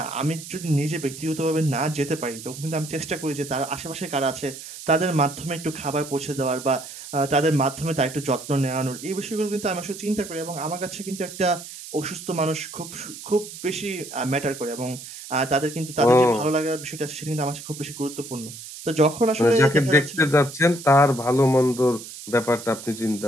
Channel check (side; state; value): right; noise; hiss, 13 dB below the sound